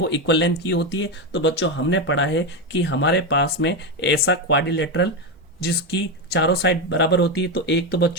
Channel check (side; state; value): both; normal; correlation 0.12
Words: इक्वल लेंथ की होती है। तो बच्चों हमने पढ़ा है कि हमारे पास में ऐसा क्वाड्रिलेटरल जिसकी चारों साइड बराबर होती है, तो एक तो